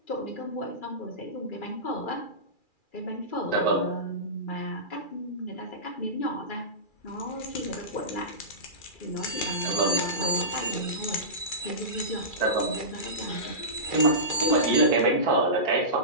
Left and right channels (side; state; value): right; late; 2.4 ms